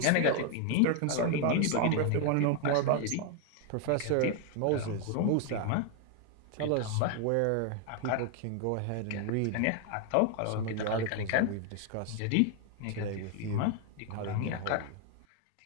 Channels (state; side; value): different; both; correlation 0.00